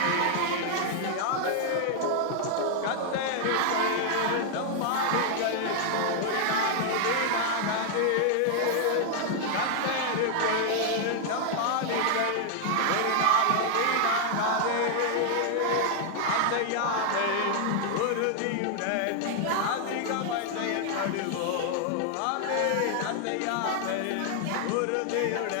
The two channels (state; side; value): different; both; correlation 0.00